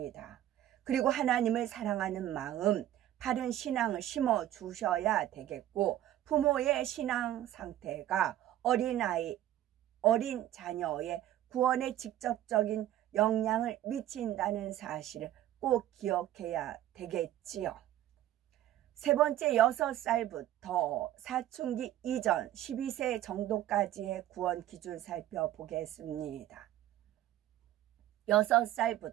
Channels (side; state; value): left; quieter; 13.1 dB